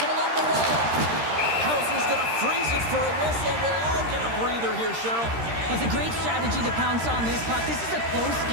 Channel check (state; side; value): late; left; 13 ms